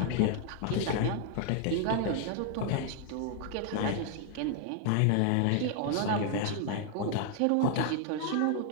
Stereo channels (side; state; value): both; different; correlation 0.00